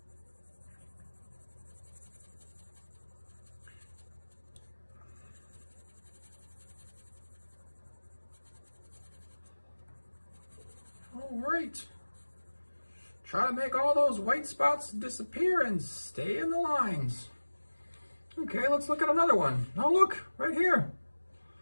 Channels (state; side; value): inverted; both; correlation -1.00